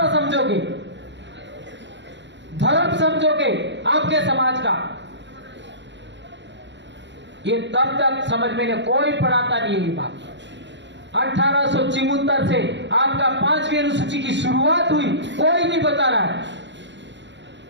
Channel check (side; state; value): left; late; 0.52 ms